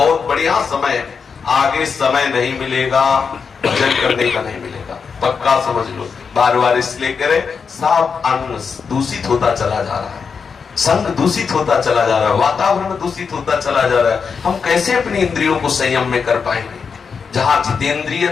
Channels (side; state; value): right; quieter; 5.8 dB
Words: बढ़िया समय है। आगे समय नहीं मिलेगा, भजन करने का नहीं मिलेगा, पक्का समझ लो। बार बार इसलिए करें, साफ अन्न दूषित होता चला जा रहा है, संग दूषित होता चला जा रहा है, वातावरण दूषित होता चला जा रहा है। हम कैसे अपनी इंद्रियों को संयम में कर पाएंगे? जहां